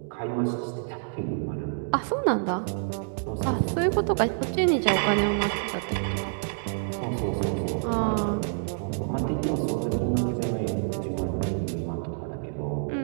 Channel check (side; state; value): left; silent; digital silence